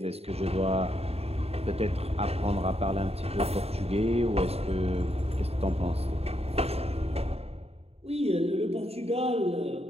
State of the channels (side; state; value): left; late; 0.29 ms